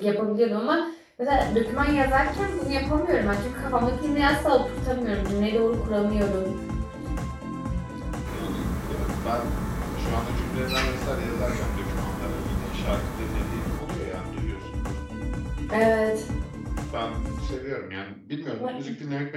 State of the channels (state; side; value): identical; both; correlation 1.00